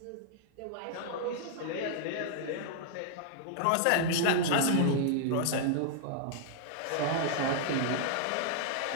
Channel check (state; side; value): different; both; correlation -0.01